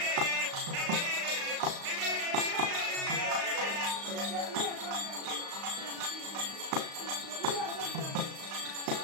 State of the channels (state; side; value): late; left; 35 ms